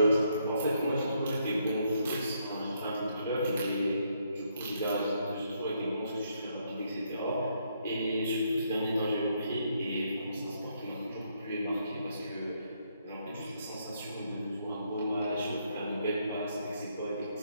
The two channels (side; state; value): both; inverted; correlation -0.74